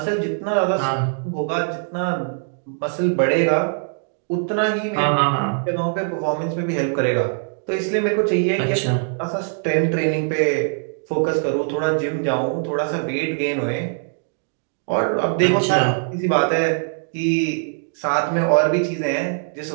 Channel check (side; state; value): left; silent; digital silence